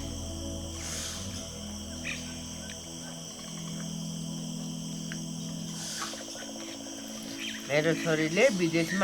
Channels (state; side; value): noise; left; rumble, 23 dB below the sound